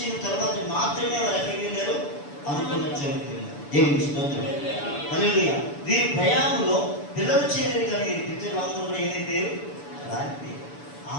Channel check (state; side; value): late; right; 6.9 ms